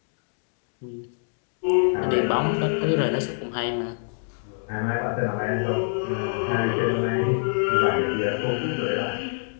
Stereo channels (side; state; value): right; silent; digital silence